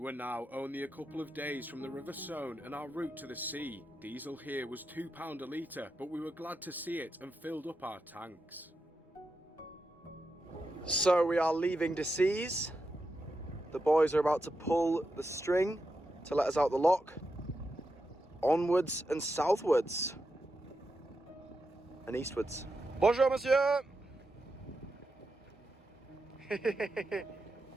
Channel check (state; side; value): normal; both; correlation 0.87